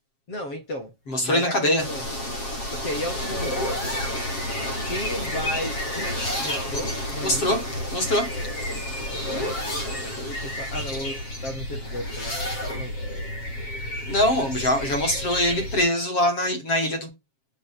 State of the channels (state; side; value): late; right; 7.4 ms